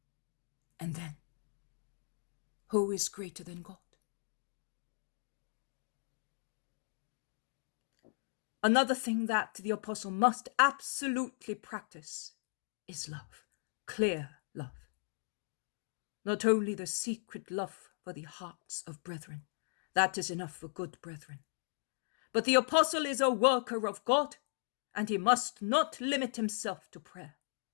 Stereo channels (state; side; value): silent; right; digital silence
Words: And then, who is greater than God? Another thing that the apostle must absolutely practice is love, clear love. Not only the secret love for the hearts of brethren, that is enough for good brethren, but the apostle is a worker of God, and he must not limit himself to prayer.